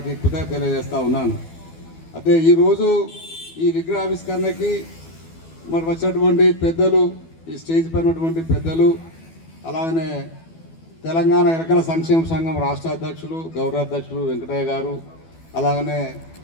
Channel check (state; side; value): late; right; 12 ms